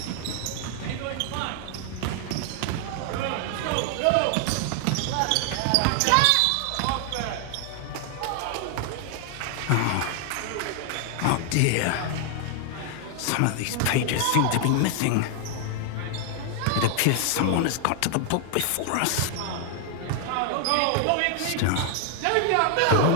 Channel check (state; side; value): different; both; correlation 0.00